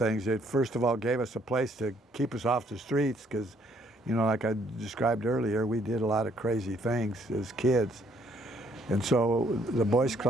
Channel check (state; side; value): normal; both; correlation 0.66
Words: It first of all gave us a place to keep us off the streets because, like I described earlier, we did a lot of crazy things as kids. And so the Boys